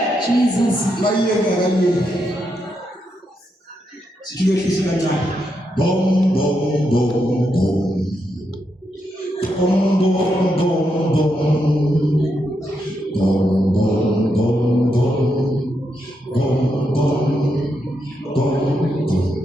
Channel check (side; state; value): both; normal; correlation 0.82